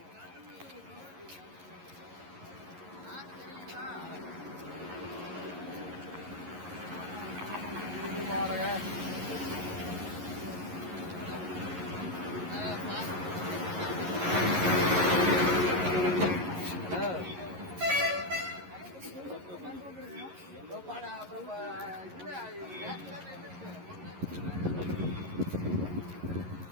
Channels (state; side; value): late; left; 11 ms